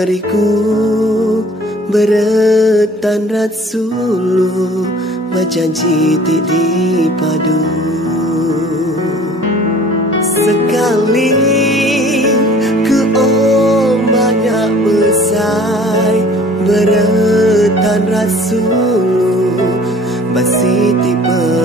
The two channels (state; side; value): normal; both; correlation 0.51